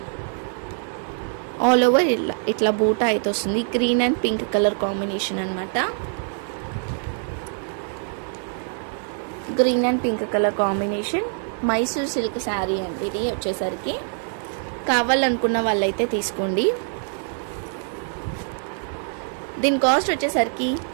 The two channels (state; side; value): silent; left; 63 dB below the other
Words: ఆల్ ఓవర్ ఇట్లా బూటా అయితే వస్తుంది. Green and pink colour combination అనమాట. Green and pink colour combination Mysore silk sari అండి ఇది వచ్చేసరికి. కావాలనుకున్న వాళ్ళైతే తీసుకోండి. దీని కాస్ట్ వచ్చేసరికి